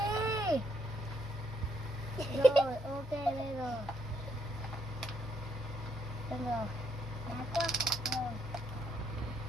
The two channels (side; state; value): both; normal; correlation 0.74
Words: Rồi ok đây rồi. Được rồi. Đá quá. Rồi.